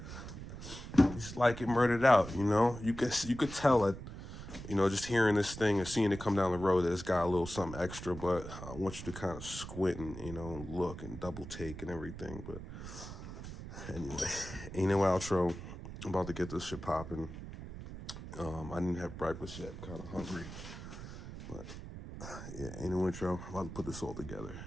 just like it murdered out. You know, you could tell it. You know, just hearing this thing and seeing it come down the road, it's got a little something extra, but I want you to kind of squint and, you know, look and double take and everything. But anyway, ain't no outro. I'm about to get this shit popping. I didn't have breakfast yet. I'm kind of hungry. But yeah, ain't no intro. I'm about to put this all together.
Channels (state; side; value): noise; right; rumble, 11 dB below the sound